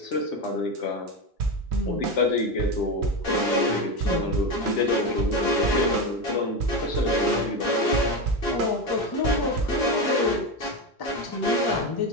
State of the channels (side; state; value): both; normal; correlation 0.16